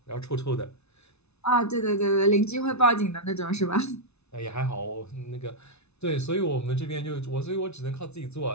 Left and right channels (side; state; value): right; late; 0.81 ms